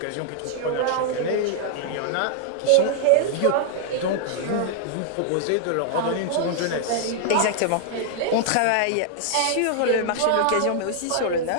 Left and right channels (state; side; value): different; both; correlation 0.00